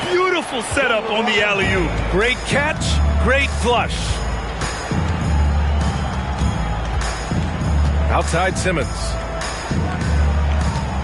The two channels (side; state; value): both; identical; correlation 1.00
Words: Beautiful setup on the alley-oop. Great catch, great flush. Outside Simmons.